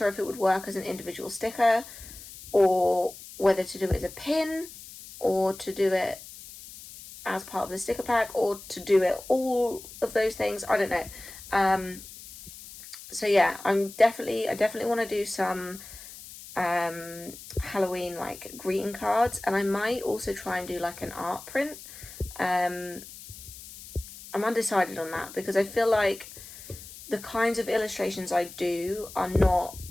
if it would work as an individual sticker, or whether to do it as a pin, or to do it as part of the sticker pack, or to do it all of those things. I don't know. So yeah, I definitely want to do some Halloween like greeting cards, and I might also try and do like an art print. I'm undecided on that, because I feel like the kinds of illustrations I do are not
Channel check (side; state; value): left; noise; hiss, 16 dB below the sound